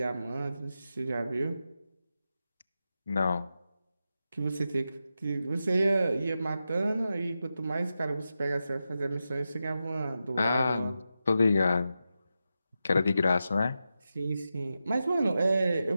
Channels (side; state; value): both; inverted; correlation -0.90